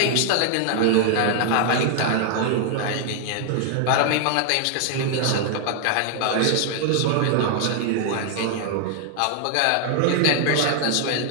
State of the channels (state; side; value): different; both; correlation 0.00